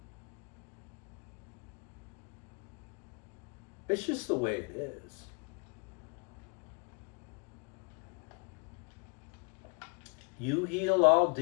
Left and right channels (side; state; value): right; quieter; 34.2 dB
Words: It's just the way it is. You heal, I'll